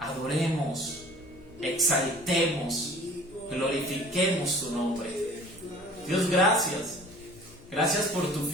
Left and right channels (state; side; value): noise; left; hum, 23 dB below the sound